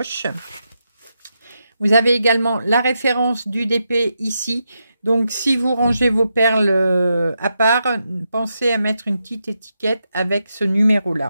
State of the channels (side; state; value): both; inverted; correlation -0.85